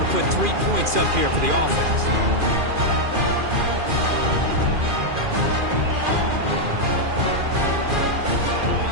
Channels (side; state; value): left; late; 2.4 ms